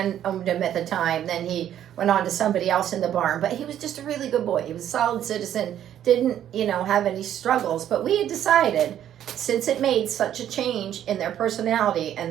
owned him at the time. Then he went on to somebody else in the barn, but he was just a really good boy. He was a solid citizen, didn't, have any struggles, but we had decided, since it made such a change in their personality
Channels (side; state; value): left; quieter; 10.8 dB